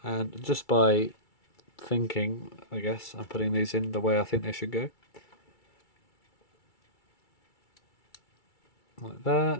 just by thinking, I guess, I'm putting these in the way I think they should go. Like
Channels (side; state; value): right; late; 2.3 ms